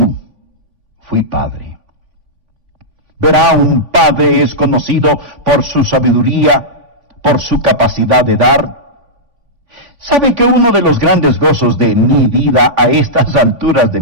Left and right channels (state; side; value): late; left; 3.5 ms